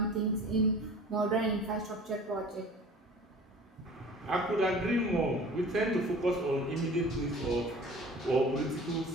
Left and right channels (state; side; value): normal; both; correlation 0.44